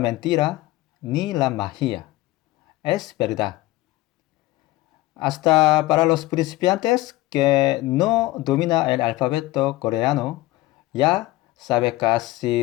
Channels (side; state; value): right; quieter; 18.3 dB